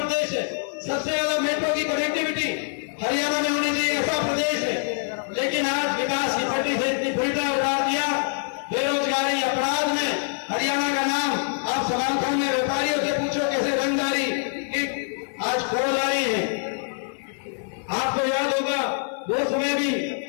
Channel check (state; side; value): silent; right; 62 dB below the other